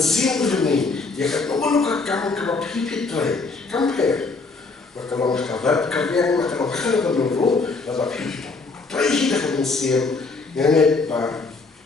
ini, ya kat nomor kamu kalau pipit tray, compare. Kalau kabar kabar kalau kalau dulu, lalu pipit tray kita kemensian, yang ni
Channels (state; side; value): quieter; right; 4.0 dB